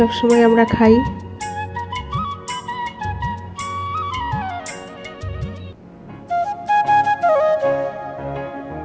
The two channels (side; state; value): both; identical; correlation 1.00